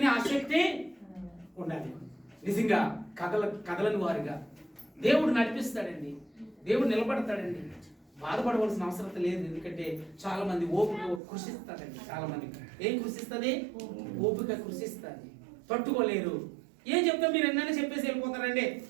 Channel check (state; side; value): drops out; left; at 11.2 s